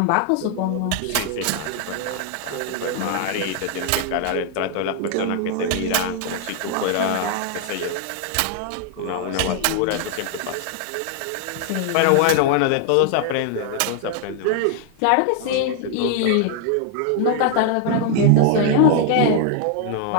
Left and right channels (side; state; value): both; different; correlation 0.00